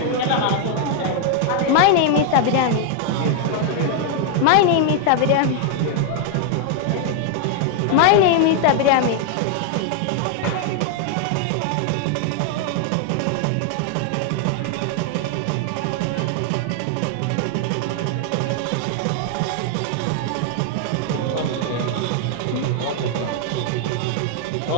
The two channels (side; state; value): both; different; correlation 0.00